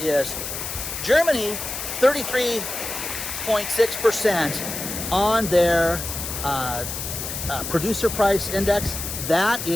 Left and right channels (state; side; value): noise; left; hiss, 6 dB below the sound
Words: is Germany, 33.6% on their producer price index. That